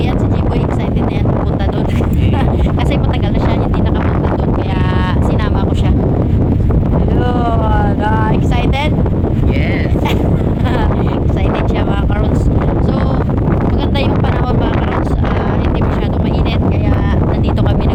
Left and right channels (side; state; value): both; identical; correlation 1.00